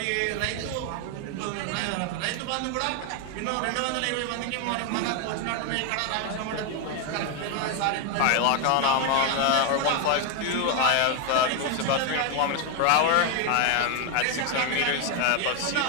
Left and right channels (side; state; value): both; different; correlation 0.01